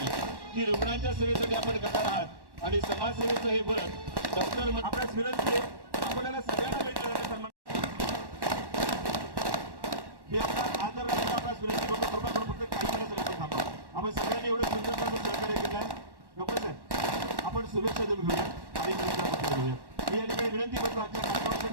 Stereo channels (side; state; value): left; late; 1.1 ms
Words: ही रुग्णांच्या सेवेसाठी आपण करणार आहात आणि समाजसेवेचं हे बरं डॉक्टर आपल्यास विनंती आहे आपल्याला सगळ्यांना भेटलं सन्मान हे आपला आदर राखून आपल्यास विनंती करतो. कृपा करून फक्त काही वेळासाठी थांबा. आपण सगळ्यांनी एवढं सुंदर सहकार्य केलं आहे. डॉक्टर साहेब आपण शुभेच्छा देऊन घेऊया आणि घेऊया. मी या ठिकाणी विनंती करतो आजच्या